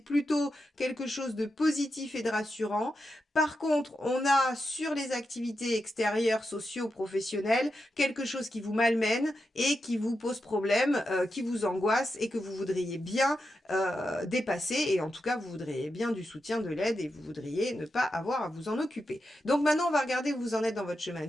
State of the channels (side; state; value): both; normal; correlation 0.87